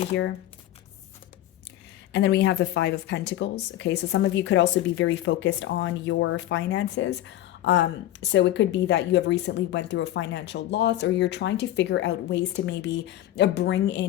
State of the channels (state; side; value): quieter; right; 13.8 dB